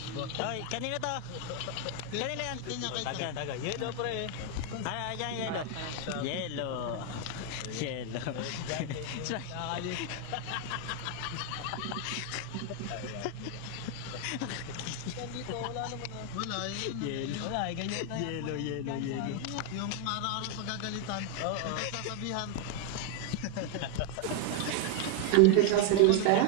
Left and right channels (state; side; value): different; both; correlation 0.01